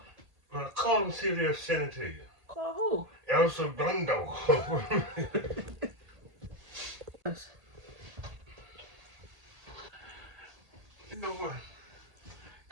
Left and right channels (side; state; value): left; late; 1.8 ms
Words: Well, call them and see if they'll send it to you. Call who? El Segundo. You know what?